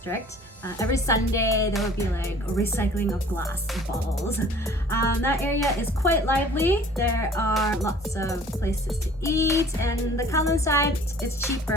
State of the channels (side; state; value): both; normal; correlation 0.50